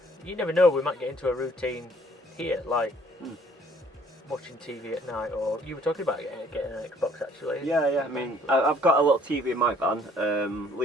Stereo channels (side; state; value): both; normal; correlation 0.59